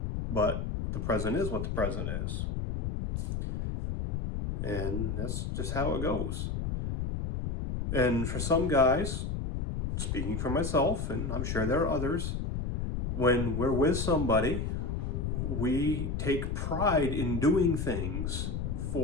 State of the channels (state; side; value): noise; left; rumble, 2 dB below the sound